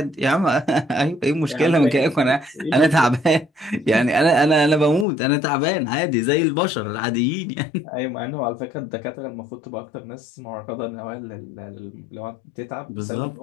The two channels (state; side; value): drops out; right; at 5.1 s